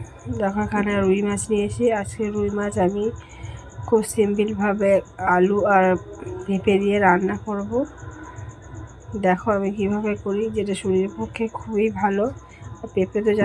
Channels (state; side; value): identical; both; correlation 1.00